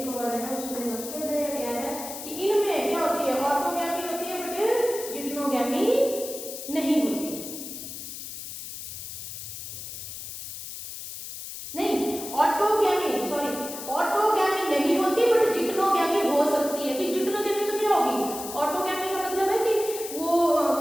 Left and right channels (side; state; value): left; noise; hiss, 9 dB below the sound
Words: और है उसमें मस्टर्ड है या क्या है, कि इनमें क्या होती है, ऑटोगैमी होती है बट जिप्नोगैमी नहीं होती। नहीं, ऑटोगैमी नहीं होती बट जिप्नोगैमी हो सकती है। तो जिप्नोगैमी तो क्या होगी, ऑटोगैमी का मतलब है कि वो